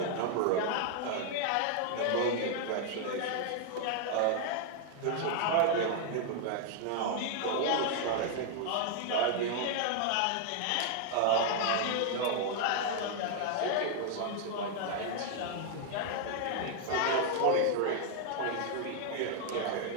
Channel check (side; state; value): both; different; correlation 0.00